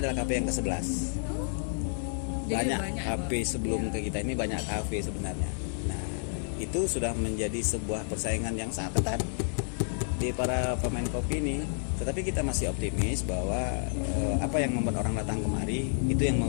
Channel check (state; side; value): silent; right; 58 dB below the other